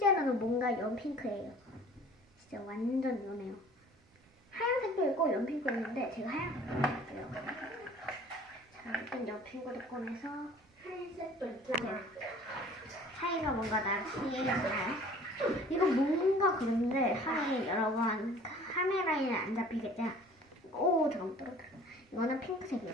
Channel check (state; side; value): normal; both; correlation 0.49